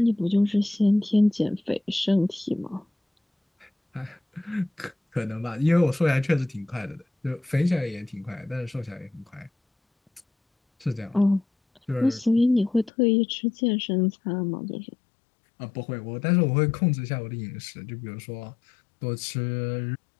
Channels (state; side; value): drops out; right; at 12.9 s